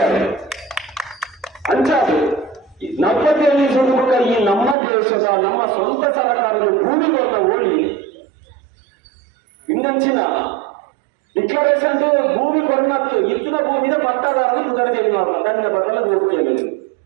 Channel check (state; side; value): drops out; left; at 4.8 s